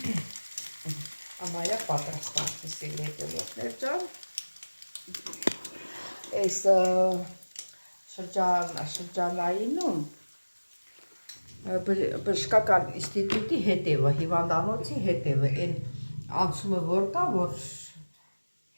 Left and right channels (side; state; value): both; inverted; correlation -1.00